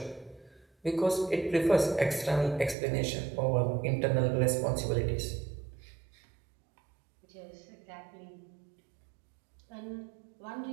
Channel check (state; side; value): drops out; left; at 2.8 s